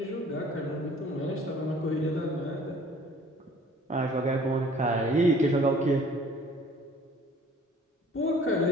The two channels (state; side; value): normal; both; correlation 0.53